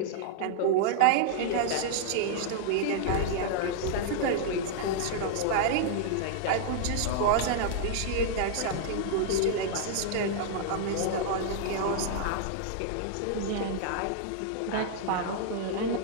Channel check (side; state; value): both; different; correlation -0.01